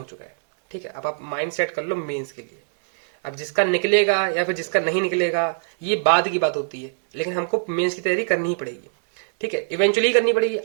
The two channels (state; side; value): silent; left; 64 dB below the other